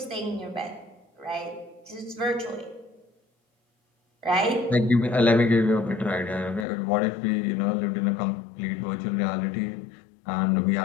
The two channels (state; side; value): drops out; right; at 6.7 s